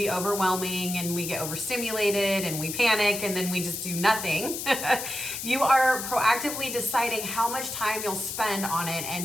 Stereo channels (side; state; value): left; noise; hiss, 5 dB below the sound